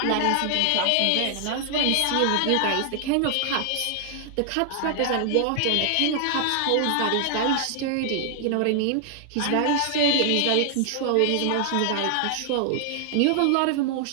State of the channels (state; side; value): different; both; correlation 0.00